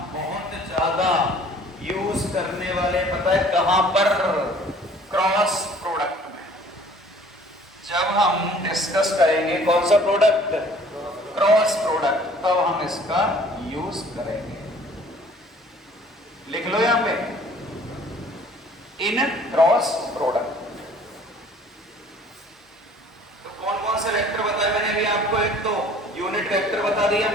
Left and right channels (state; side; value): normal; both; correlation 0.53